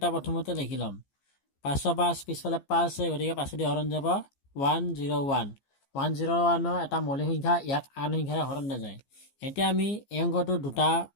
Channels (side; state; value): right; late; 15 ms